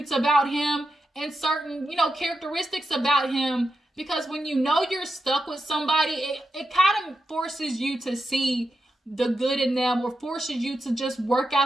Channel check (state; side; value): normal; both; correlation 0.88